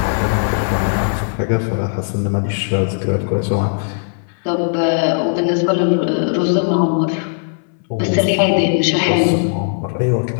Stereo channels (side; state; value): right; silent; 67 dB below the other